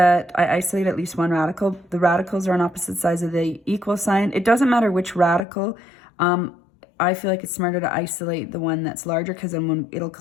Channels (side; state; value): right; drops out; at 5.5 s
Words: I isolate at least one radical. The radicals are on opposite sides of the equal sign. It doesn't matter which radical. I feel like it's smarter to isolate the one that's larger because then it'll